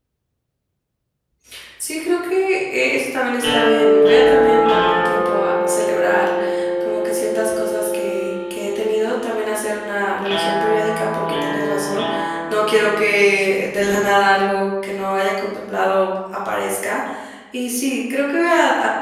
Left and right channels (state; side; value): identical; both; correlation 1.00